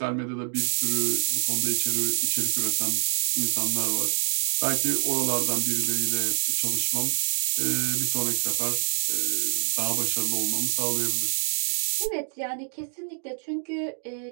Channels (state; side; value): silent; left; digital silence